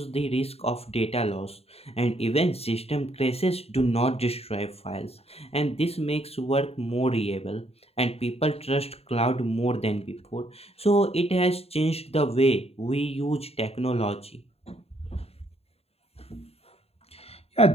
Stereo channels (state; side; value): late; right; 0.29 ms